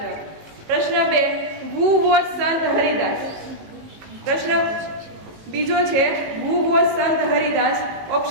જવાબ. પ્રશ્ન 2 હુ વોઝ સંત હરિદાસ. પ્રશ્ન બીજો છે હુ વોઝ સંત હરિદાસ.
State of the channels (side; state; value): left; late; 18 ms